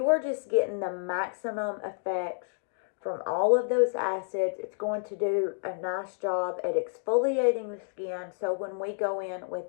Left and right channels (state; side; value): silent; right; digital silence